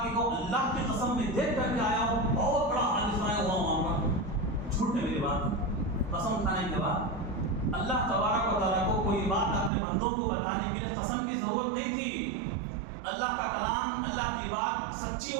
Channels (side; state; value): left; drops out; at 9.7 s